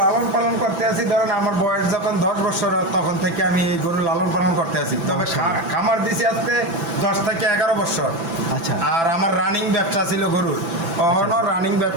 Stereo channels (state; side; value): late; left; 6.0 ms